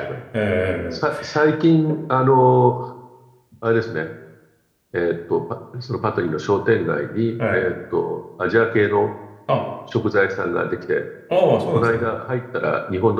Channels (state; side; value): identical; both; correlation 1.00